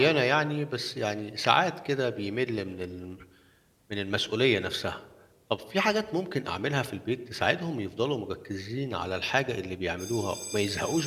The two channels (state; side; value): identical; both; correlation 1.00